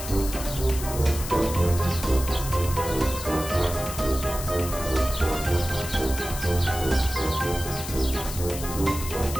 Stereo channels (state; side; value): noise; left; hiss, 9 dB below the sound